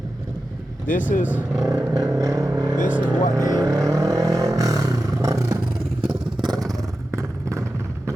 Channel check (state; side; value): normal; both; correlation 0.92